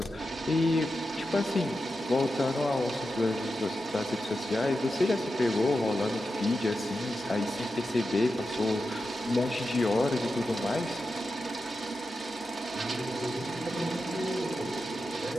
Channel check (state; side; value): normal; both; correlation 0.90